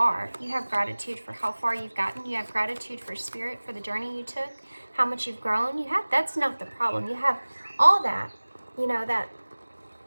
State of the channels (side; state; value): both; inverted; correlation -1.00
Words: You have gratitude for how far you've gotten. You have gratitude for spirit, for the journey you took, how much you've grown. That's not the problem. You have all that, you know, that